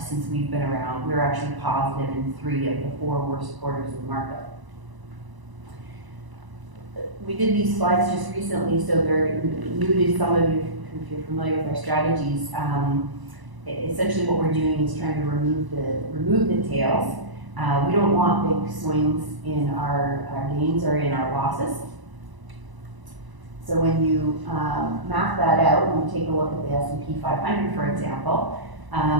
we've been around, we're actually positive in 3 of the 4 worst quarters of the market. We did these slides just recently, so they're new to some of you if you're familiar with our strategies. Essentially what we're doing is trying to remove the tails. We don't want big swings in our gains or in our losses. So when you map that out, and you take a look at the S&P 500, for example,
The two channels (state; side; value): late; left; 1.0 ms